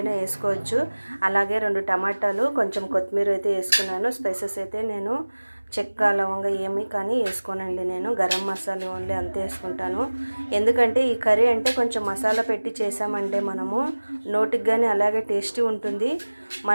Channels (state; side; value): inverted; both; correlation -1.00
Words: వేసుకోవచ్చు. అలాగే 2 టమాటాలు, కొంచెం కొత్తిమీర అయితే వేసుకున్నాను. స్పైసెస్ అయితే నేను చెక్క లవంగా ఏమి కానీ వేసుకోనండి. నేను గరం మసాలా ఓన్లీ అంతే వేసుకుంటాను. ఎందుకంటే ఈ కర్రీ అంటే కొంచెం మసాలా పెట్టి చేసామంటే మనము నోటికి కానీ అలాగే టేస్టీ ఉంటుంది.